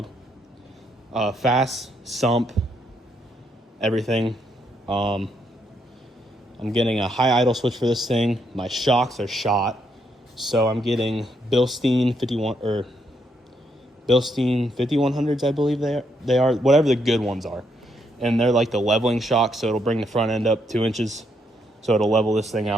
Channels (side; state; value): both; normal; correlation 0.76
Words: Fast, sump, everything. I'm getting a high idle switch for this thing. My shocks are shot. So I'm getting Bilstein 5100s, I believe they are, whatever the good ones are. And they're like the leveling shocks, so it'll bring the front end up 2 inches. So it'll level this thing